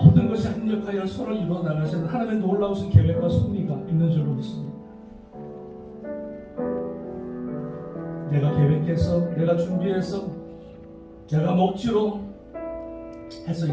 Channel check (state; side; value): identical; both; correlation 1.00